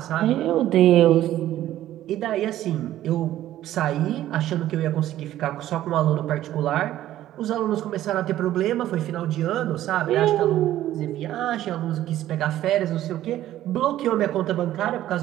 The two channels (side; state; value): left; quieter; 13.3 dB